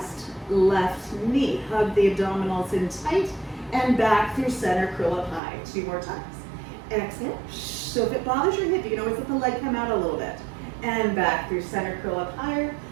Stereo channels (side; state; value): left; drops out; at 5.4 s